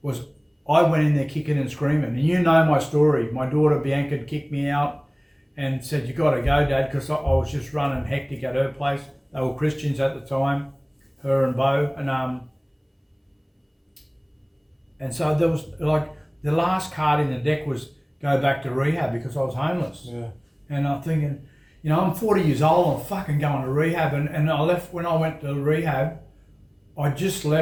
was I went in there kicking and screaming, and you know my story. My daughter Bianca had kicked me out and said, "You got to go, Dad," because I was just running hectic at her place. They were Christians at the time, her and Bo, and so there was like the last card in the deck was go back to rehab because I was homeless. Yeah. And I'm thinking, you know, I'm 40 years old, I'm fucking going to rehab, and I left, when I went to rehab, I just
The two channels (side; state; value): both; identical; correlation 1.00